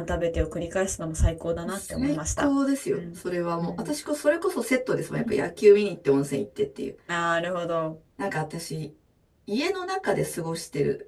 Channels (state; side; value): identical; both; correlation 1.00